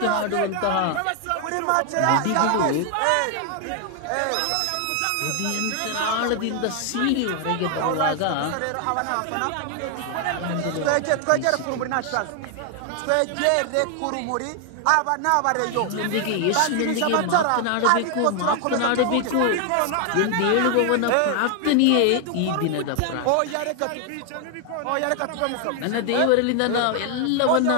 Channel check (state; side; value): different; both; correlation 0.00